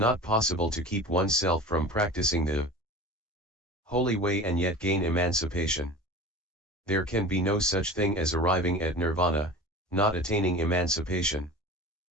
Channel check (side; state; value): both; normal; correlation 0.36